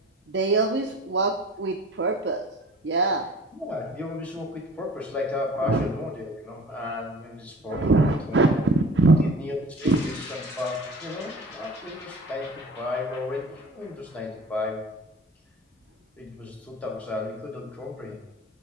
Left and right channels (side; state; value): both; normal; correlation 0.43